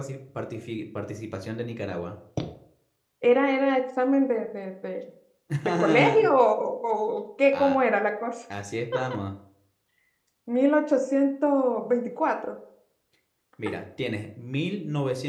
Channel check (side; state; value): both; identical; correlation 1.00